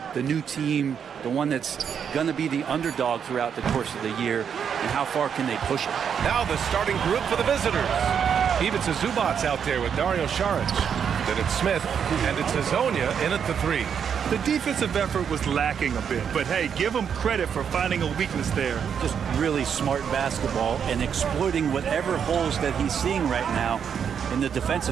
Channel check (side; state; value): left; quieter; 7.6 dB